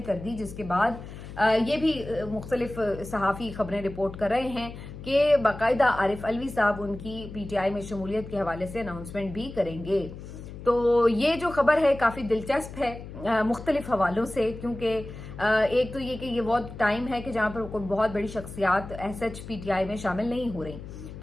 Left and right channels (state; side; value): noise; left; hum, 12 dB below the sound